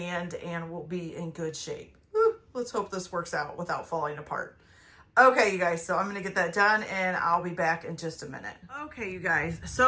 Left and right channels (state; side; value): identical; both; correlation 1.00